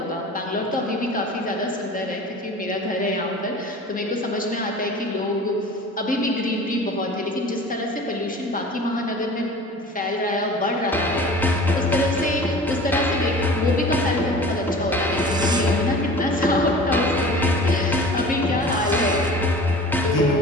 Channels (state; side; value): normal; both; correlation 0.40